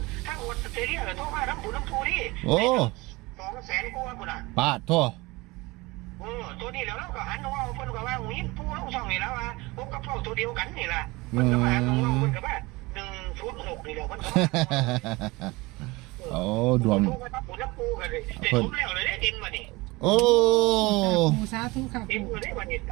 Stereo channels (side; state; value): left; quieter; 22.9 dB